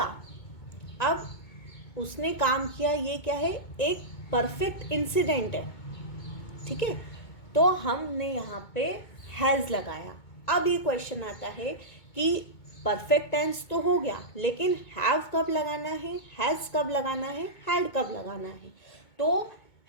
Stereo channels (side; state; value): right; late; 2.2 ms